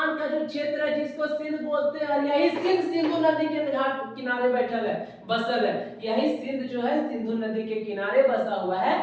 का जो क्षेत्र है जिसको सिंध बोलते हैं, और यही सिंध सिंधु नदी के घाट किनारे बैठल है, बसल है। यही सिंध जो है सिंधु नदी के किनारे बसा हुआ है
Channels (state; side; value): identical; both; correlation 1.00